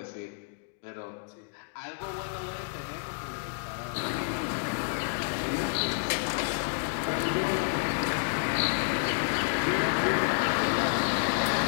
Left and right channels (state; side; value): silent; right; digital silence